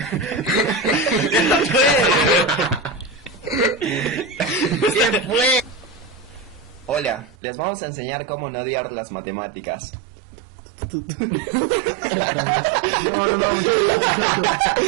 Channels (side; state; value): left; drops out; at 7.4 s